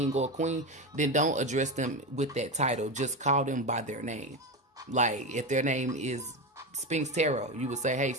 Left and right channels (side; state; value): both; normal; correlation 0.17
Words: or a queen, then don't address them with that title. Just call them by their name. Like, if their name is Spinks Tarot, you would say, hey,